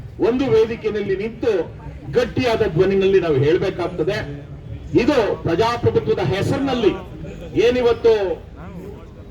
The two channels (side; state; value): both; identical; correlation 1.00